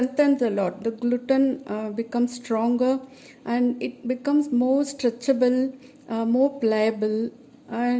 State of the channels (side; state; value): both; identical; correlation 1.00